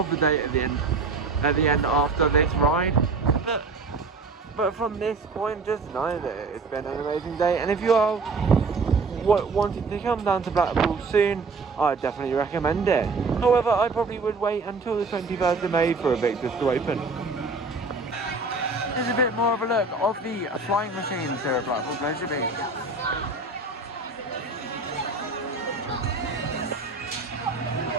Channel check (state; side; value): quieter; left; 3.9 dB